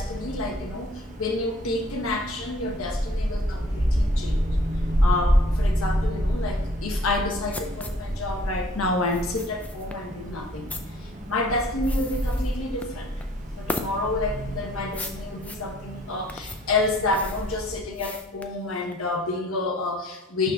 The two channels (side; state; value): both; normal; correlation 0.56